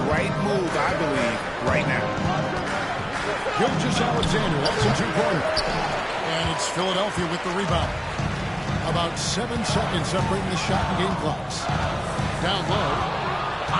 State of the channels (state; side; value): identical; both; correlation 1.00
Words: right move, I believe, right now. Alexander, that's a 2-pointer. And it's Philadelphia with the rebound. About 7 seconds separating the shot and game clocks. Down low.